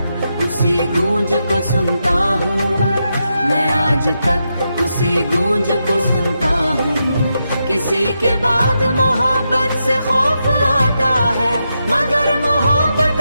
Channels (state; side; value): inverted; both; correlation -0.85